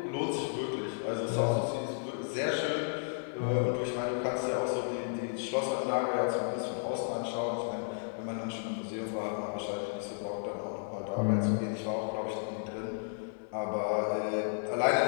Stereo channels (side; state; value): right; silent; digital silence